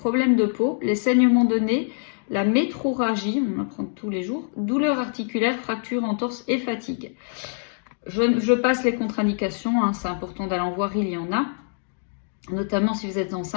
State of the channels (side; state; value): right; silent; digital silence